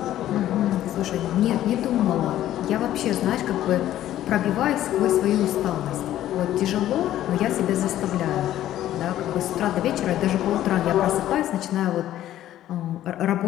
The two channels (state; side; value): quieter; right; 12.9 dB